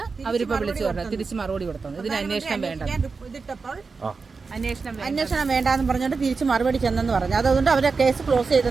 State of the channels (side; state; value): left; quieter; 4.6 dB